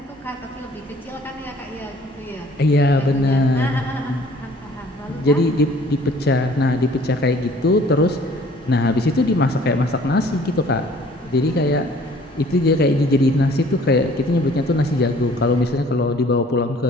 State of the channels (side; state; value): both; normal; correlation 0.54